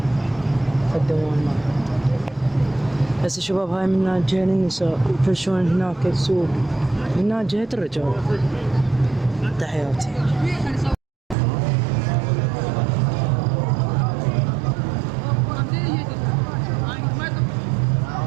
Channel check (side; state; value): left; drops out; at 11.4 s